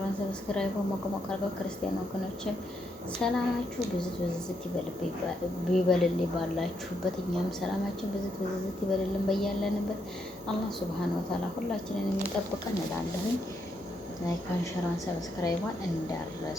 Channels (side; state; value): both; normal; correlation 0.78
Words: ሰብስክራይብ ሞቅሞቅ አድርገው ክርስቲያን ወገኖችን ሰላማችሁ ብዝት ብዝት ይበልልኝ ባላችሁበት። እኛም ሰላማችን ብዝት ብዝት ይበልልን በያለንበት። አላህ ሱብሃነሁ ወተዓላ ሁላችንን የሚጠብቀን እላለሁኝ። ላይክ አንሸራን ሰብስክራይቧን